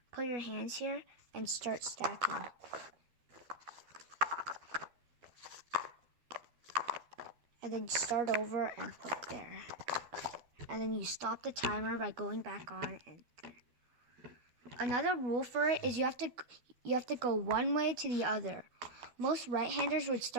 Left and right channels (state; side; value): late; left; 12 ms